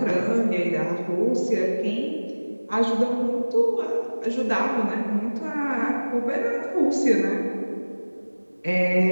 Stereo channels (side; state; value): both; inverted; correlation -1.00